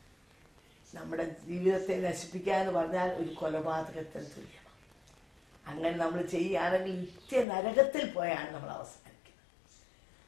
നമ്മുടെ ജീവിതത്തെ നശിപ്പിക്കുക എന്ന് പറഞ്ഞാൽ ഒരു കൊലപാതകത്തിന് തുല്യമാണ്. അങ്ങനെ നമ്മൾ ചെയ്യുകയാണെങ്കിൽ നിത്യനരകത്തിൽ പോയാണ് നമ്മൾ അവസാനിക്കുന്നത്.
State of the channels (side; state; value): right; drops out; at 7.5 s